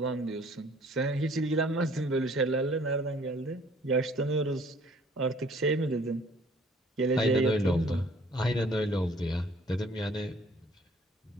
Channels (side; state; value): both; normal; correlation 0.56